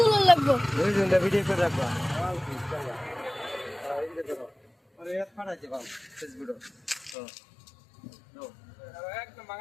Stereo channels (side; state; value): right; drops out; at 7.2 s